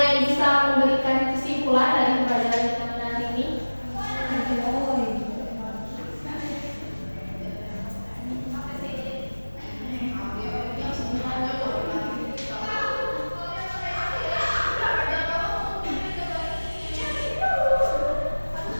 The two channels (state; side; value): inverted; both; correlation -1.00